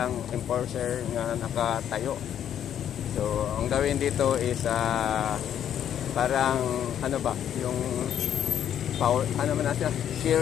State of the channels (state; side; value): quieter; right; 9.9 dB